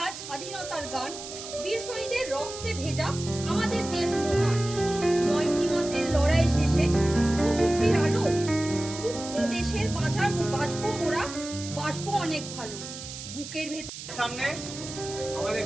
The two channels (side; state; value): right; noise; hiss, 11 dB below the sound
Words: স্বাধীনতার গান, বীর শহীদের রক্তে ভেজা আমাদের দেশ মহান। ৯টি মাসের লড়াই শেষে মুক্তির আলো, মুক্তি দেশের বাঁচবো মোরা, বাঁচবো অনেক ভালো। বুকের ভেতর সামনে আমাদের